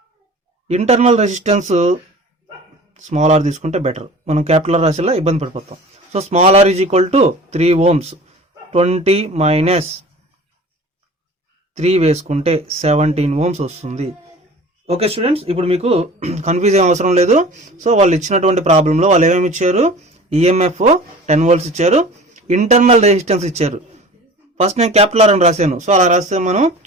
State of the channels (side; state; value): both; normal; correlation 0.41